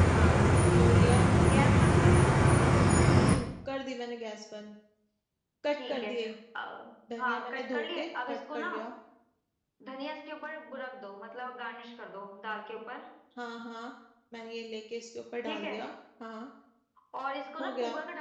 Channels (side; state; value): both; identical; correlation 1.00